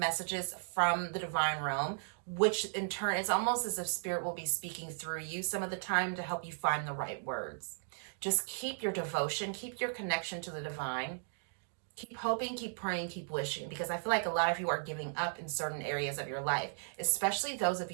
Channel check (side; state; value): left; silent; digital silence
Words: from the divine realm, which in turn, it's almost as if spirit will be speaking through you some of the time to help you find the right words. Just keep your devotion, keep your connection to the divine. Keep hoping, keep praying, keep wishing, because I feel like a lot of you are giving up in certain areas of your life, especially those of